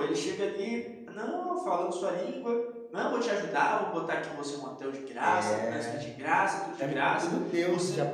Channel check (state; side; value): identical; both; correlation 1.00